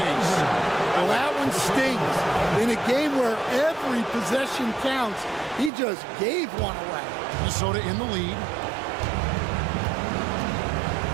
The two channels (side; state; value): left; drops out; at 5.7 s